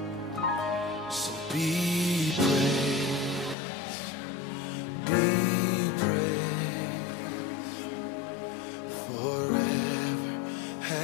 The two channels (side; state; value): right; drops out; at 3.6 s